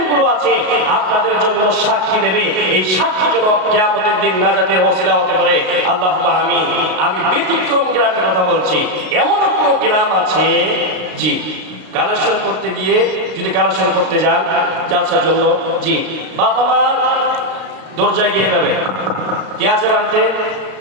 গুলো আছে আপনাদের জন্য সাক্ষী দেবে। এই সাক্ষী যেন কিয়ামতের দিন নাজাতের ওসিলা হতে পারে। আল্লাহুম্মা আমিন। আমি ব্যতিক্রম গ্রামের কথা বলছি। এমন কোনো গ্রাম আছে, জি, কালেকশন করতে গিয়ে যদি কালেকশন করতে যান জালসার জন্য, জি, বাবা মার দরজায় গিয়ে যাবে, কে আছে বাড়িতে?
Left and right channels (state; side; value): late; left; 33 ms